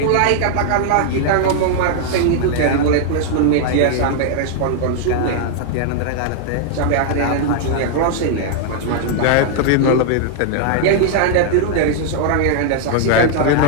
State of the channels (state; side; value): different; both; correlation 0.00